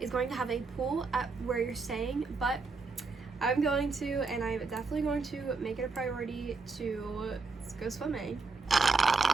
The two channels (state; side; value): quieter; left; 4.2 dB